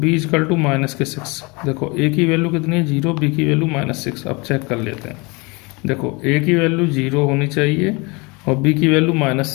इक्वल टू माइनस के 6। देखो a की वैल्यू कितनी है 0, b की वैल्यू -6। अब चेक कर लेते हैं, देखो a की वैल्यू 0 होनी चाहिए और b की वैल्यू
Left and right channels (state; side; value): quieter; right; 27.6 dB